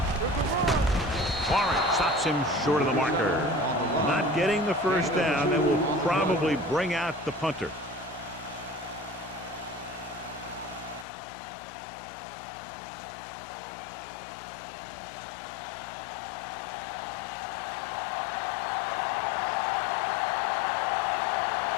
Warren stops him short of the marker. Not getting the first down. That will probably bring out the punter.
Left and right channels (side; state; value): right; drops out; at 11.1 s